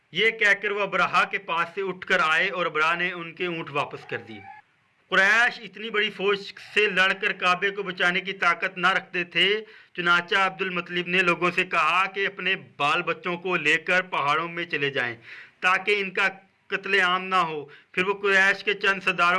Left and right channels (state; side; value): identical; both; correlation 1.00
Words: اٹھ کر آئے اور ابرہہ نے ان کے اونٹ واپس کر دی۔ قریش اتنی بڑی فوج سے لڑ کر کعبے کو بچانے کی طاقت نہ رکھتے تھے، چنانچہ عبد المطلب نے لوگوں سے کہا کہ اپنے بال بچوں کو لے کر پہاڑوں میں چلے جائیں تاکہ ان کا قتل عام نہ ہو۔ پھر وہ قریش کے چند